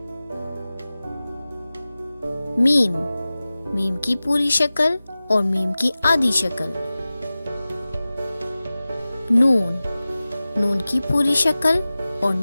میم کی پوری شکل اور میم کی آدھی شکل۔ نون کی پوری شکل اور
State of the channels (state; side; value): inverted; both; correlation -0.97